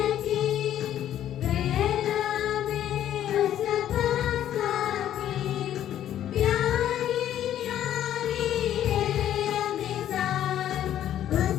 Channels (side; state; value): right; quieter; 11.3 dB